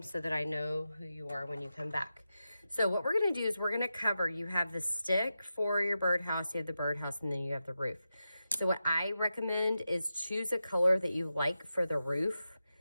so that I know who you are when you come back. So what we're gonna do is we're gonna cover, you have the stick for your birdhouse, you have the birdhouse, and then you have the roof. So what I recommend is choose a color that you like for the roof.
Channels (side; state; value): both; inverted; correlation -0.90